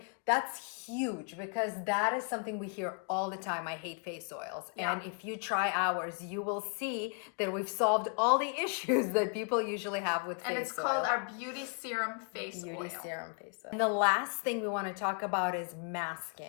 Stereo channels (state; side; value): quieter; right; 39.3 dB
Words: huge because that is something we hear all the time. I hate face oils. Yeah. And if you try ours, you will see that we've solved all the issues that people usually have with face oil. And it's called our Beauty Serum Face Beauty Oil. Serum Face Oil. And the last thing we want to talk about is